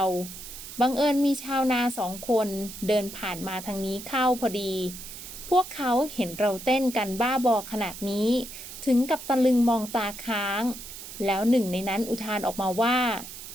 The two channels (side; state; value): right; noise; hiss, 12 dB below the sound